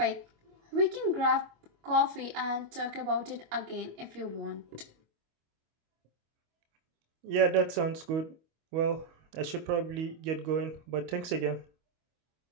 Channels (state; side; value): late; left; 25 ms